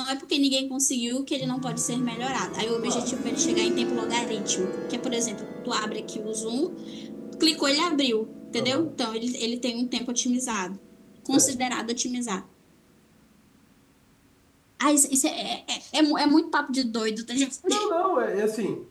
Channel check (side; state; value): both; identical; correlation 1.00